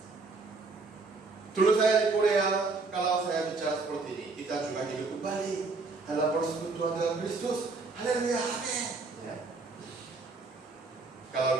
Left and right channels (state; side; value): quieter; left; 3.9 dB